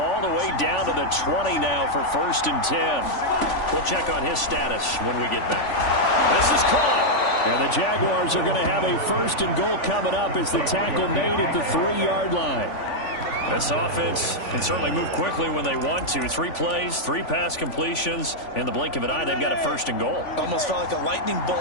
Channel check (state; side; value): late; right; 3.5 ms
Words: the way down to the 20 now for 1st and 10. We'll check on his status when we get back. This is caught. And the Jaguars are going to have a 1st and goal coming up as the tackle made at the 3-yard line. This offense can certainly move quickly when they want to. 3 plays, 3 pass completions. In the blink of an eye, they've got a 1st and goal. Almost felt like a lightning